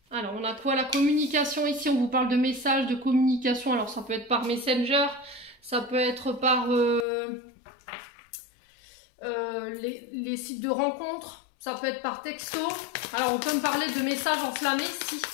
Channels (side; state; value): right; drops out; at 7.1 s